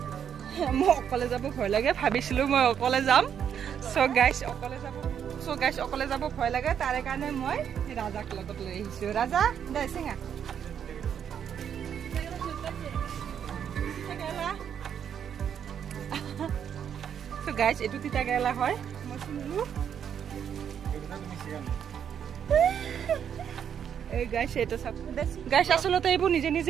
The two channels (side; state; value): left; quieter; 8.4 dB